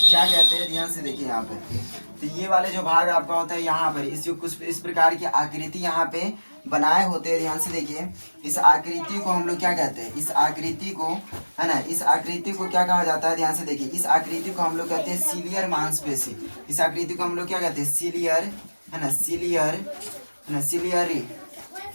कहते हैं, ध्यान से देखिए यहाँ पे। तो ये वाले जो भाग आपका होता है यहाँ पर, इस जो कुछ इस प्रकार की आकृति यहाँ पे बनाए होते हैं। ध्यान से देखिए, इस आकृति को हम लोग क्या कहते हैं, इस आकृति को, है ना, इस आकृति को क्या कहा जाता है, ध्यान से देखिए, इस आकृति को हम लोग कहते हैं सीलियर मांसपेशी। इस आकृति को हम लोग क्या कहते हैं, सीलियर है ना, सिलियर है ना, सिलियरी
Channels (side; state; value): both; inverted; correlation -1.00